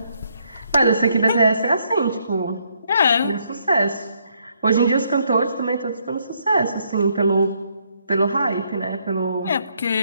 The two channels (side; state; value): both; inverted; correlation -0.72